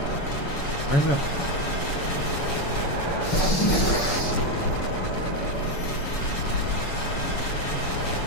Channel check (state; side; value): late; right; 7.0 ms